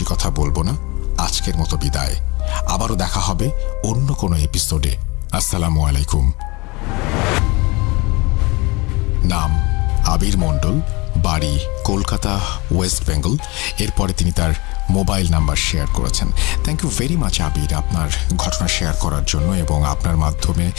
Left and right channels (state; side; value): quieter; right; 24.9 dB